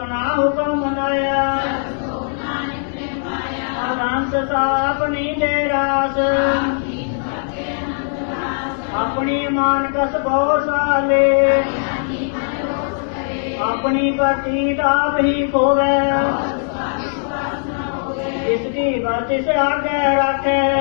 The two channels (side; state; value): right; silent; digital silence